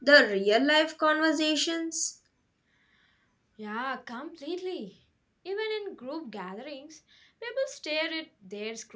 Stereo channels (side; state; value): both; identical; correlation 1.00